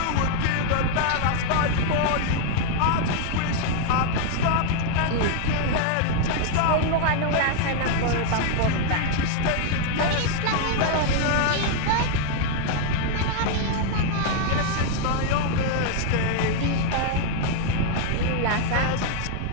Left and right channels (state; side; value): different; both; correlation 0.00